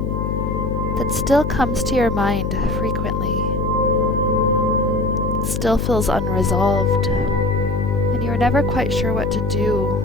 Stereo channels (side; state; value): left; noise; hum, 1 dB below the sound